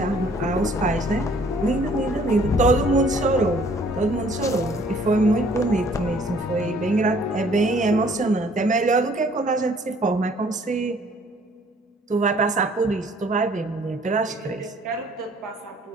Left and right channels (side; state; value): both; normal; correlation 0.58